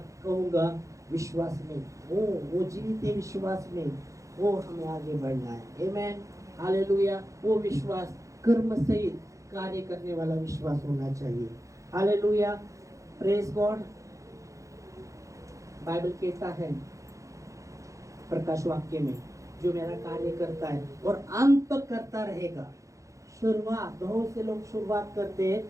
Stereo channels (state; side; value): late; left; 0.15 ms